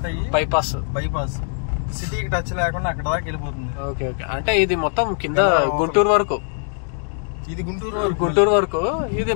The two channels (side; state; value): right; silent; 64 dB below the other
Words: అయ్యి బైపాస్ సిటీకి టచ్ లేకుండా అక్కడ దాకా వెళ్ళిపోతుంది. ఓకే, అంటే ఇది మొత్తం కింద గుంటూరు వరకు. ఇది గుంటూరు వరకు. ఇది